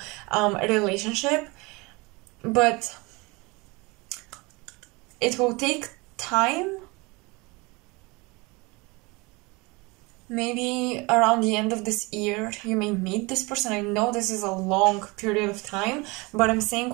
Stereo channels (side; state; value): left; quieter; 25.7 dB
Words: relationship, but it will take time. Maybe around the end of this year you may meet this person. I know this is a long period of time, but I'm saying